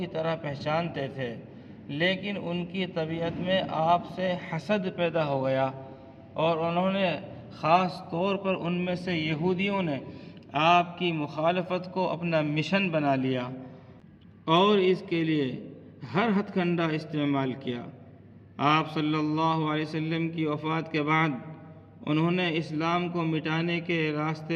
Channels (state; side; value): identical; both; correlation 1.00